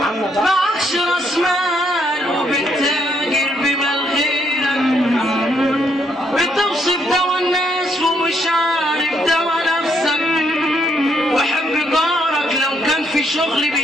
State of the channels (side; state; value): both; normal; correlation 0.73